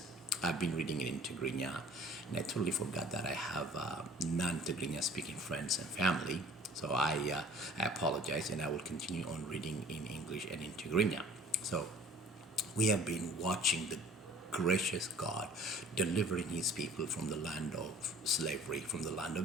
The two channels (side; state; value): both; normal; correlation 0.50